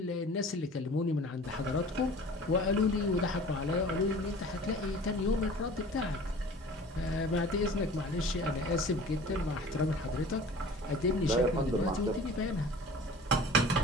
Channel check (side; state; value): both; normal; correlation 0.43